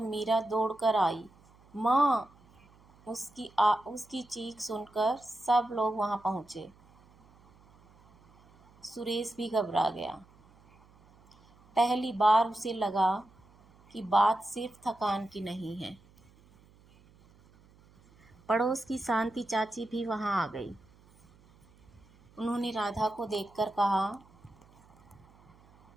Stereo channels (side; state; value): right; noise; hum, 28 dB below the sound